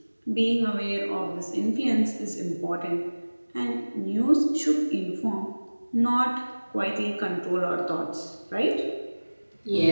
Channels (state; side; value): inverted; both; correlation -1.00